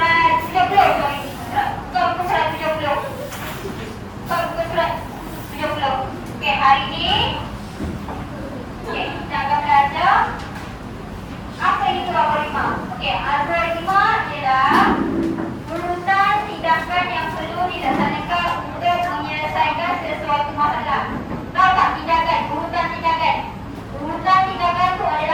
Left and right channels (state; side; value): identical; both; correlation 1.00